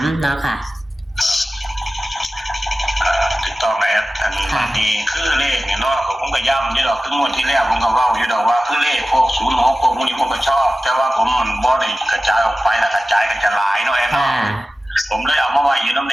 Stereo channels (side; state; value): both; normal; correlation 0.95